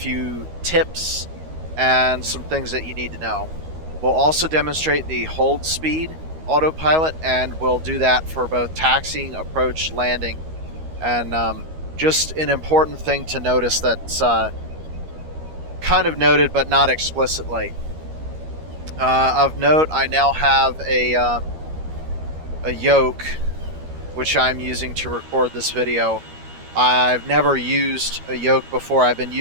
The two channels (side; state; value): left; late; 13 ms